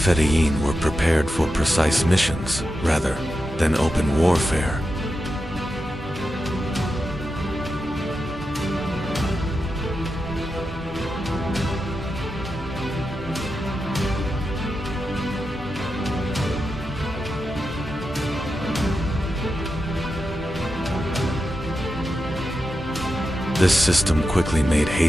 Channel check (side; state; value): both; normal; correlation 0.89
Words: were prepared for precise missions rather than open warfare. This system quickly made